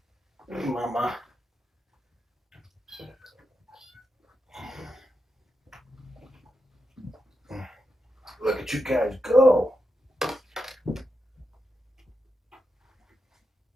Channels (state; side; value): normal; both; correlation 0.87